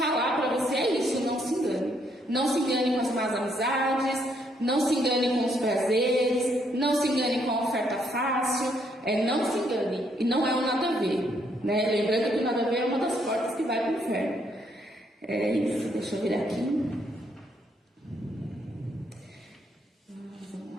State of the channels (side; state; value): both; normal; correlation 0.72